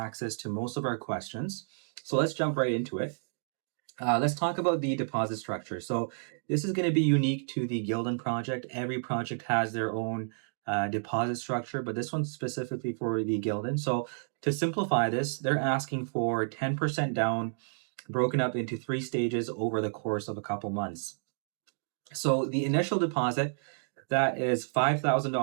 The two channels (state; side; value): silent; left; digital silence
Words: to most of our questions. So let's jump right into it. Let's talk about the deposit structure. So this is going to be unique to the Guilden project. Every project has their own deposit structure, but this one's specifically for the Guilden. So to simplify this, they're asking for 10% down, broken up into 3 stages over the course of a couple months. So the initial deposit, that is